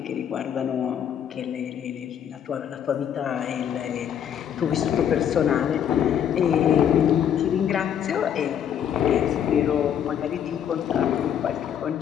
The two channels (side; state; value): right; quieter; 9.1 dB